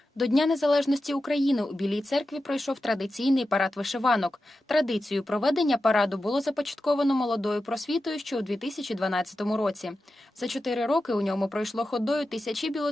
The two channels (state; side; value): normal; both; correlation 0.92